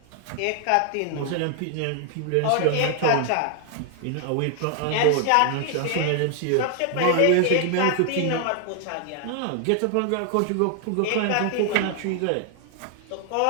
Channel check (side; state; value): both; different; correlation 0.00